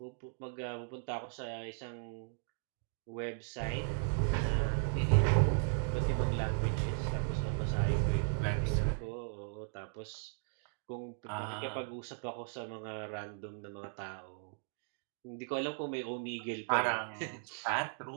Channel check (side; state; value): left; silent; digital silence